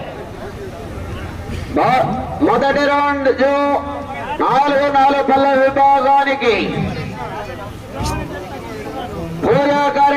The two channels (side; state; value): both; identical; correlation 1.00